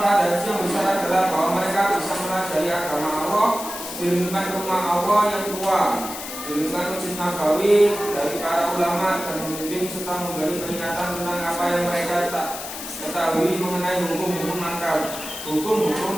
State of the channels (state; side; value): noise; left; hiss, 9 dB below the sound